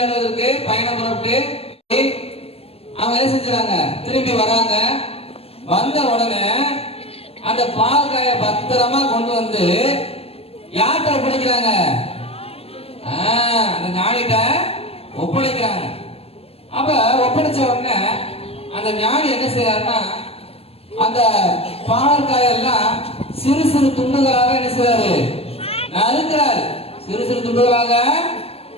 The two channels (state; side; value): late; right; 0.29 ms